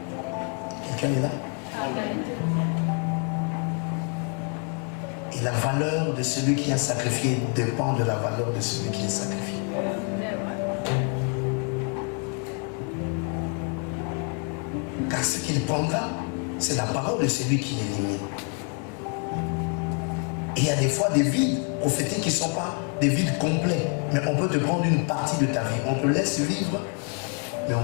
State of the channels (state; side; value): quieter; right; 39.3 dB